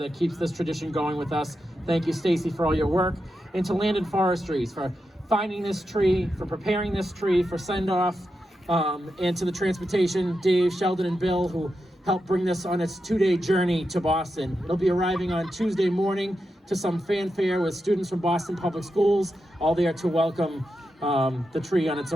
keeps this tradition going with us. Thank you, Stacy, for all your work. And to Land and Forestries for finding this tree, for preparing this tree for send-off, and to the Transportation, Dave, Sheldon, and Bill, who helped bring this on its 2-day journey to Boston. It'll be arriving on Tuesday morning to some fanfare with students from Boston Public Schools, all there to welcome the tree on its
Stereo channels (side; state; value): both; normal; correlation 0.88